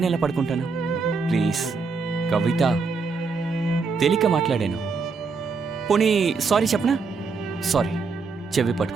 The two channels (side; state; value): left; quieter; 4.6 dB